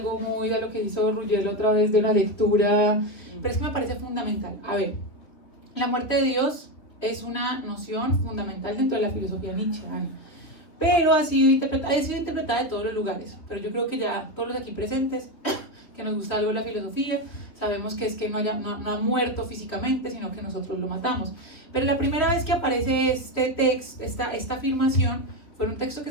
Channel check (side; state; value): right; late; 3.3 ms